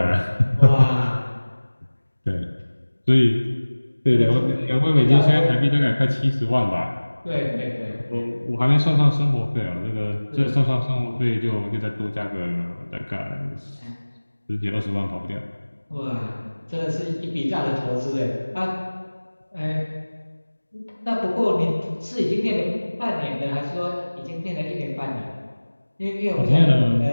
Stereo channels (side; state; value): both; inverted; correlation -1.00